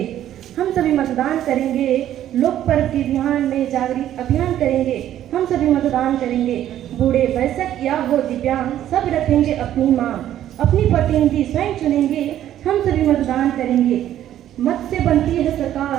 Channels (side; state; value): left; quieter; 11.8 dB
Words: हम सभी मतदान करेंगे, लोक पर्व के ध्यान में जागृत अभियान करेंगे। हम सभी मतदान करेंगे, बूढ़े वयस्क या हो दिव्यांग सब रखेंगे अपनी मांग। अपनी प्रतिनिधि स्वयं चुनेंगे, हम सभी मतदान करेंगे। मत से बनती है